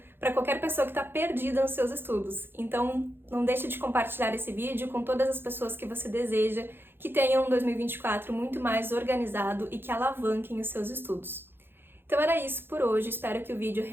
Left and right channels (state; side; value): late; left; 0.10 ms